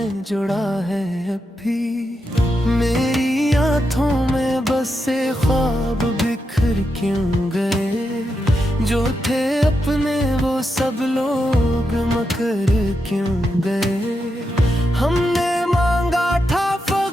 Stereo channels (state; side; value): normal; both; correlation 0.85